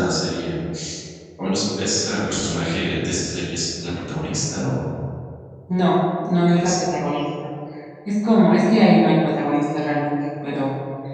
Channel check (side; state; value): both; identical; correlation 1.00